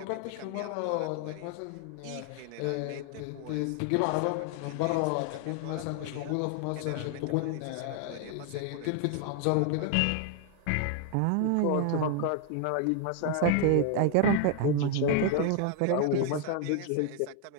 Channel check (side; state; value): both; different; correlation 0.00